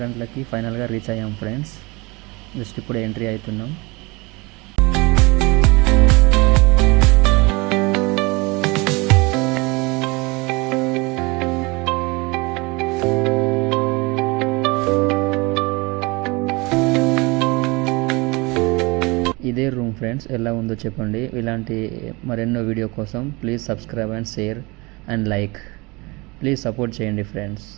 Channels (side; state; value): left; quieter; 25.6 dB